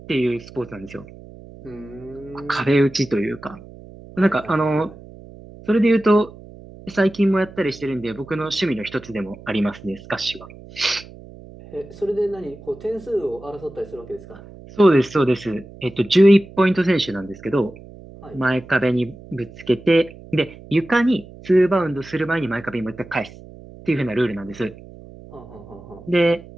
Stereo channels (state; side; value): noise; right; hum, 18 dB below the sound